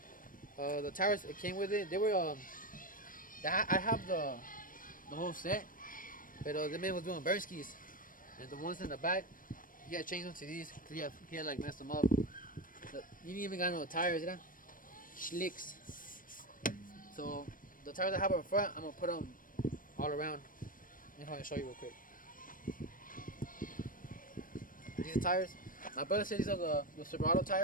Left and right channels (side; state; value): right; late; 0.40 ms